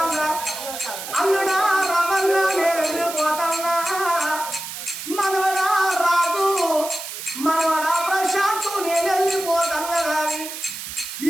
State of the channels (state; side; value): noise; right; hiss, 8 dB below the sound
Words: అల్లుడా రమన్న నేను వెళ్ళిపోతాన్నా మనవడా రాజు మనవడా ప్రశాంత్ నేను వెళ్ళిపోతాన్నా కానీ